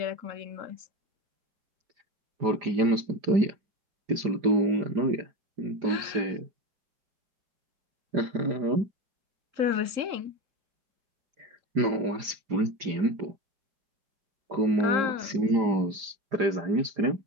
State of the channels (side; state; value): left; late; 5.0 ms